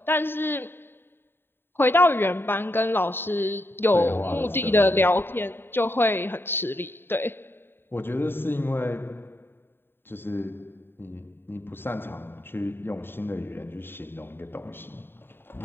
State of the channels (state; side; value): late; right; 0.11 ms